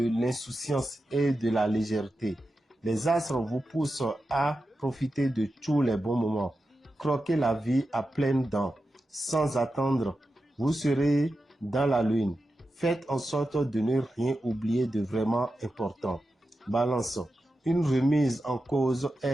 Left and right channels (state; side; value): normal; both; correlation 0.91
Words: l'insouciance et de la légèreté. Les astres vous poussent à profiter de tous les bons moments. Croquez la vie à pleines dents. Sans attendre, vous serez dans la lune. Faites en sorte de ne rien oublier de vraiment important. Balance, une remise en cause